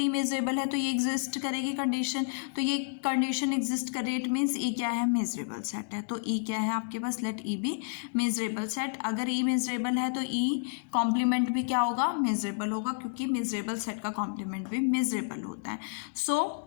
मेजरेबल है तो ये एग्जिस्ट करेगी कंडीशन, तो ये कंडीशन एग्जिस्ट कर रही है, इट मीन्स E क्या है, मेजरेबल सेट है। तो E क्या है आपके पास, लेट E भी मेजरेबल सेट। अगर E मेजरेबल है तो E कॉम्प्लीमेंट भी क्या होगा, मेजरेबल होगा, क्योंकि मेजरेबल सेट का कॉम्प्लीमेंट भी मेजरेबल होता है।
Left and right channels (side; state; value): right; silent; digital silence